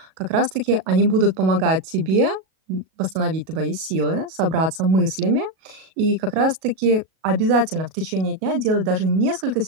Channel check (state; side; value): late; left; 37 ms